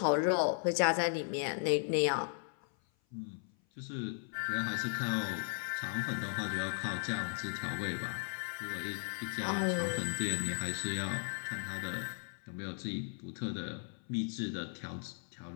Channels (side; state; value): right; silent; 53 dB below the other